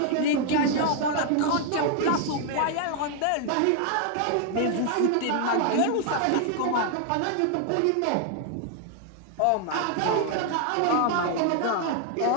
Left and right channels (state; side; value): different; both; correlation 0.00